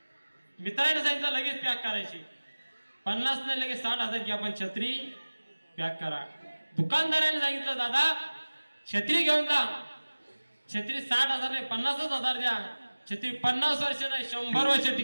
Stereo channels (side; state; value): both; inverted; correlation -1.00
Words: मित्राने सांगितलं लगेच पॅक करायची. 50 नाही लगेच 60,000 की आपण छत्री पॅक करा. दुकानदाराने सांगितलं दादा छत्री घेऊन जा, छत्री 60,000 नाही 50,000 द्या. छत्री 50 वर्ष नाही 100 वर्ष